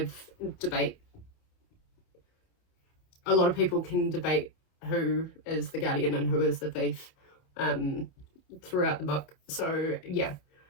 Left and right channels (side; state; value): right; late; 28 ms